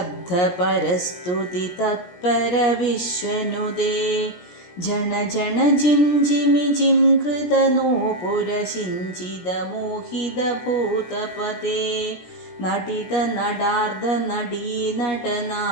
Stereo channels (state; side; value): late; right; 17 ms